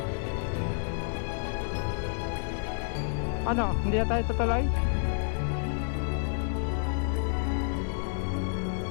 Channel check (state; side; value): silent; right; 58 dB below the other